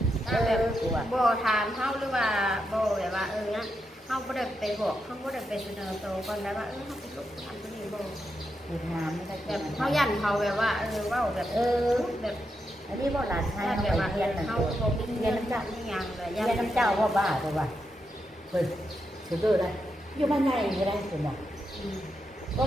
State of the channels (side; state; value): both; normal; correlation 0.84